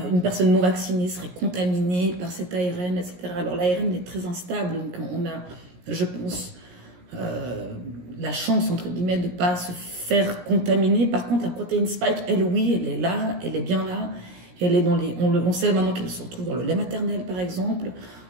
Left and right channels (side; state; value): left; late; 17 ms